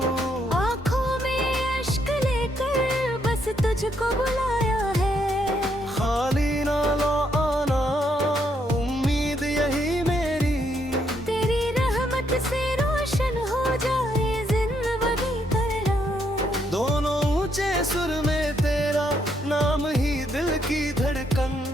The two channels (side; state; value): both; normal; correlation 0.74